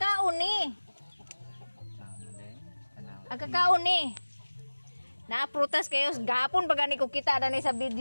ni. Agkakaon ni. Naaprutas kayo gapon pag ani ko kita na ni sa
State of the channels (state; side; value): inverted; both; correlation -1.00